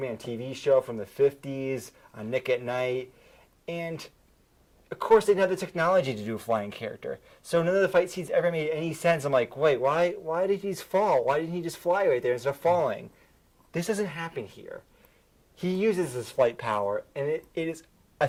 TV show from the 50s on Nick at Night. And of course, they didn't have the technology to do a flying character. So none of the fight scenes ever made any sense. I'm like, wait, why did he just fall? Why didn't he just fly right there instead of falling? This doesn't happen here. He uses his flight power, and it is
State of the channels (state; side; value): identical; both; correlation 1.00